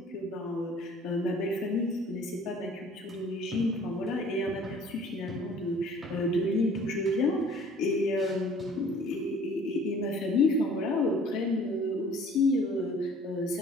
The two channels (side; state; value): both; normal; correlation 0.52